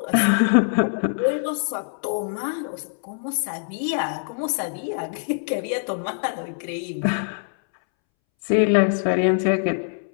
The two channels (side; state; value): right; silent; 63 dB below the other